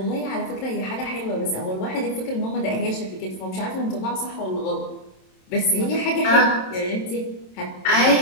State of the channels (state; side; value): late; right; 27 ms